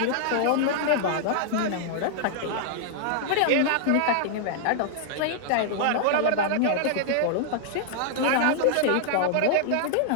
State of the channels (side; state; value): both; different; correlation -0.01